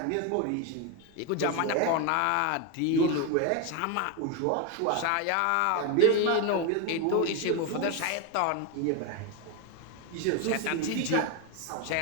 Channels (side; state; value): both; different; correlation 0.01